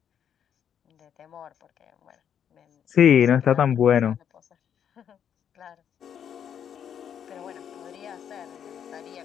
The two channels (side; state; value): right; quieter; 8.7 dB